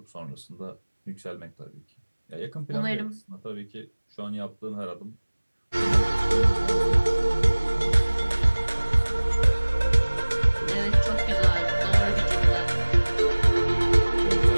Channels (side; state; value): both; inverted; correlation -1.00